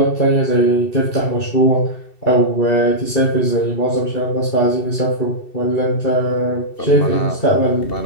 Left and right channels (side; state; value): right; late; 2.7 ms